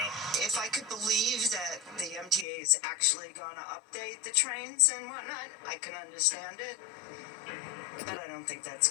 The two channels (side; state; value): right; drops out; at 2.5 s